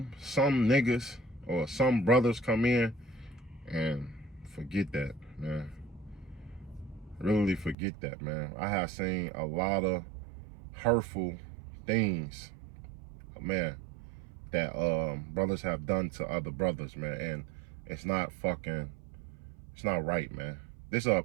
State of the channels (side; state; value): left; drops out; at 7.8 s